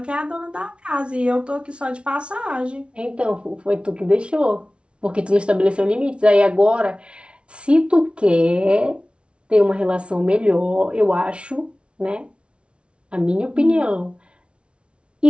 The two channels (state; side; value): late; left; 0.059 ms